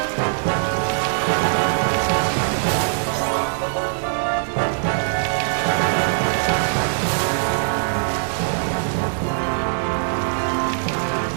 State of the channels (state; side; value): silent; left; digital silence